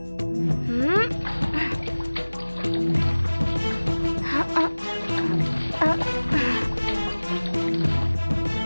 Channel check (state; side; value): inverted; both; correlation -1.00